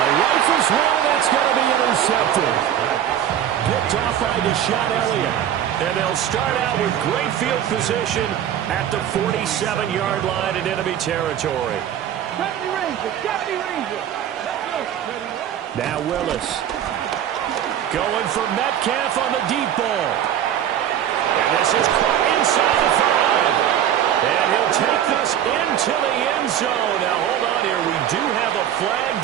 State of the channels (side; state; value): left; quieter; 10.3 dB